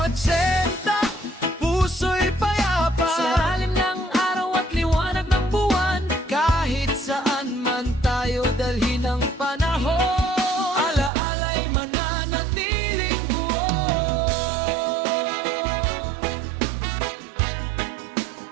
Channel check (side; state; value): left; drops out; at 11.1 s